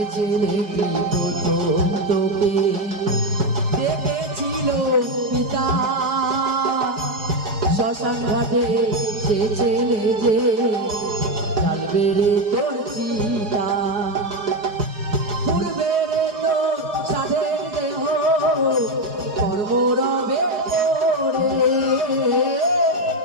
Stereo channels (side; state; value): left; late; 4.8 ms